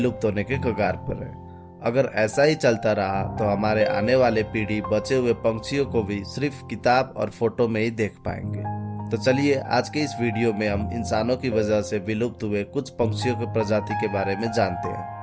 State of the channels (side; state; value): both; identical; correlation 1.00